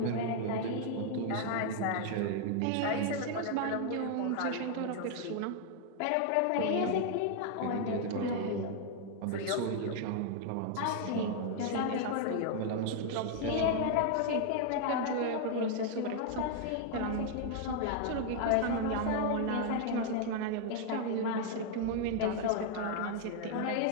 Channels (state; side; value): different; both; correlation 0.00